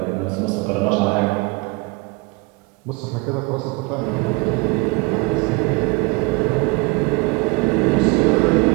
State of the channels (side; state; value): left; quieter; 26.0 dB